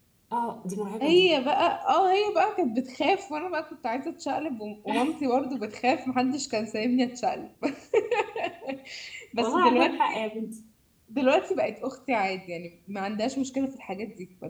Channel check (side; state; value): both; identical; correlation 1.00